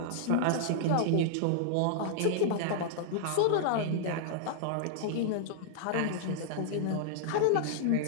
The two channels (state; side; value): different; both; correlation -0.01